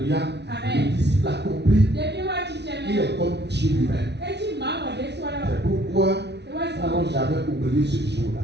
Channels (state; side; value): late; left; 0.50 ms